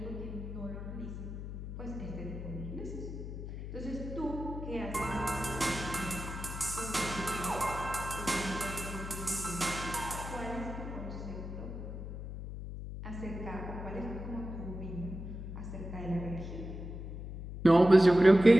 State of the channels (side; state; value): left; noise; hum, 8 dB below the sound